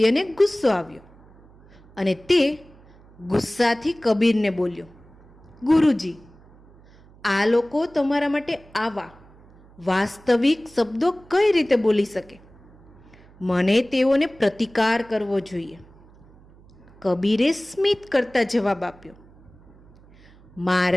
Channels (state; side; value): noise; right; hum, 26 dB below the sound